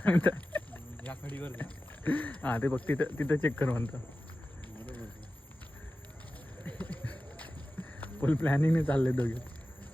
या खडीवर. हा ते बघ तिथं तिथं चेक कर म्हणतो. फुल प्लॅनिंग चालले दोघे.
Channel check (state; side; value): normal; both; correlation 0.94